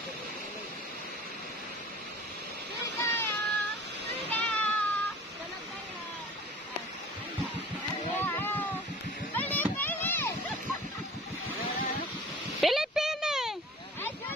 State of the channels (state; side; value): normal; both; correlation 0.44